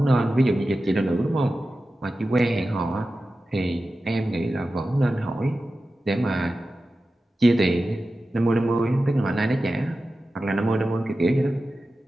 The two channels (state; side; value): normal; both; correlation 0.94